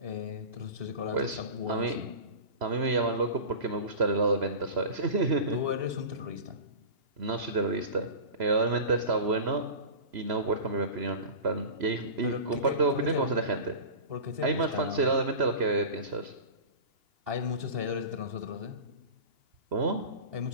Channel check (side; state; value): left; late; 3.0 ms